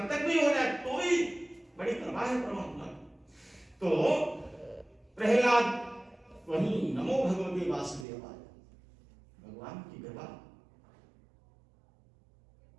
तक भी हो जाए, तो ही बड़ी कृपा है परमात्मा। तो प्रहलाद वही नमो भगवते वासुदेवाय, भगवान की कृपा,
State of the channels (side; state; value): left; drops out; at 8.1 s